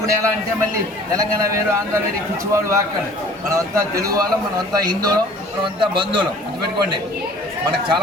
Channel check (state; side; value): normal; both; correlation 0.49